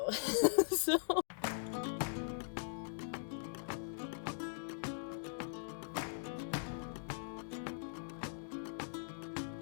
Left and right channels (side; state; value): right; silent; digital silence